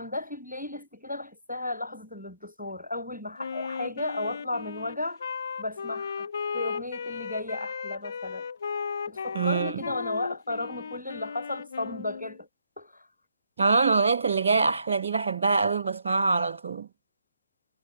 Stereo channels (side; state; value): both; inverted; correlation -0.75